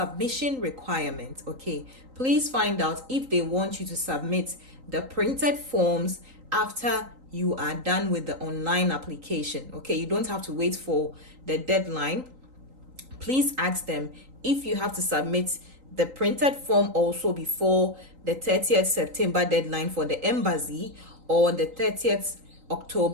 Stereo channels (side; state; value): left; late; 3.8 ms